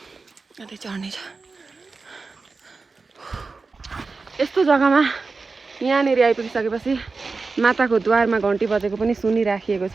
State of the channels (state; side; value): quieter; left; 4.2 dB